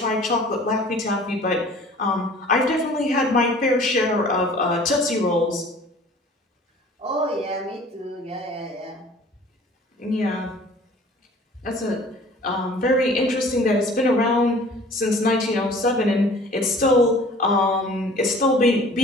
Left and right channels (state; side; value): normal; both; correlation 0.49